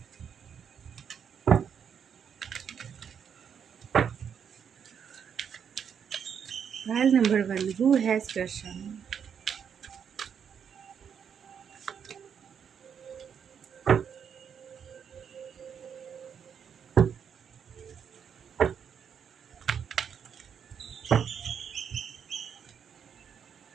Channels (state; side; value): quieter; left; 7.6 dB